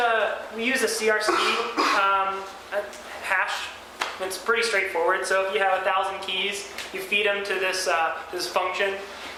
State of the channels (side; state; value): both; identical; correlation 1.00